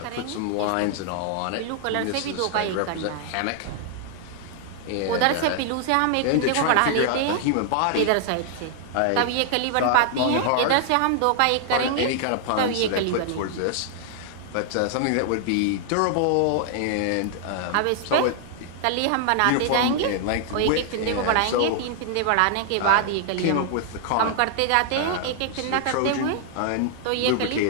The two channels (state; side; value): different; both; correlation 0.00